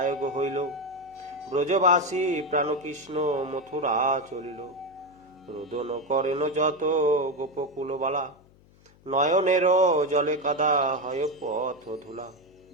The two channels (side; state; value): left; noise; hum, 28 dB below the sound